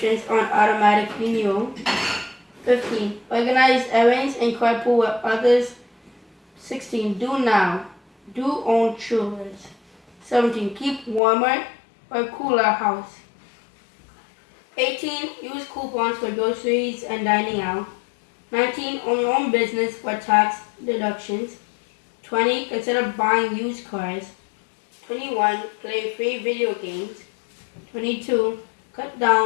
on automatic renewal. 15. Organize errands and carpool with others. 16. Do now. Do own chores. 17. Keep warmer or cooler house. 18. Use coupons for groceries and dining out. 19. Own your own business for tax deductions. 20. Consider buying used cars. 21. Play free video games. 22. Cut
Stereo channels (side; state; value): right; drops out; at 11.2 s